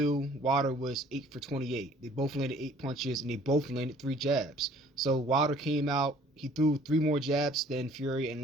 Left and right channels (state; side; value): normal; both; correlation 0.55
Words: Wilder was 8 for 28. They both landed 8 punches, and they both landed 3 jabs. So Wilder came out, he threw 3 more jabs than Fury and